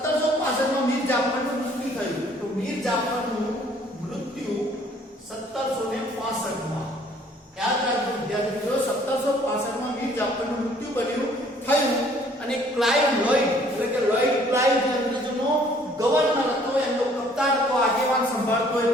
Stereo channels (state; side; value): normal; both; correlation 0.59